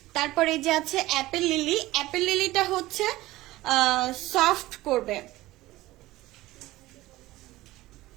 তারপরে যে আছে অ্যাপেল লিলি, অ্যাপেল লিলিটা হচ্ছে সফট করবে।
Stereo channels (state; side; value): quieter; left; 17.7 dB